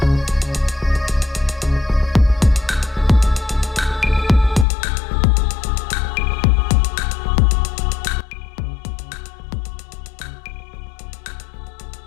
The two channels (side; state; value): right; drops out; at 4.7 s